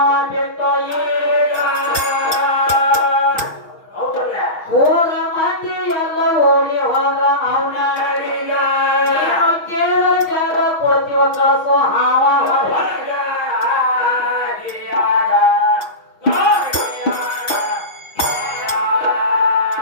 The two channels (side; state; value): right; late; 6.0 ms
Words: ಬಿಟ್ಟು ಊರ ಮಂದಿ ಎಲ್ಲ ಓಡಿ ಹೋದ ಅವನ ಕೇಳಿದ ಜಾಗ ಕೊಡ್ತೀವ ಕಳಿಸೋ ಹಾವ